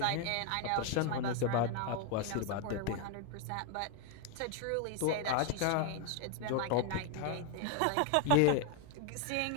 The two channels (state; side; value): different; both; correlation 0.01